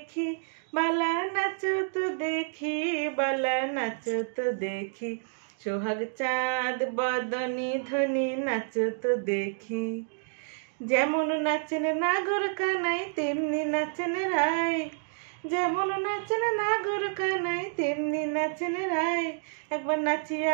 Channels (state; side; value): silent; left; digital silence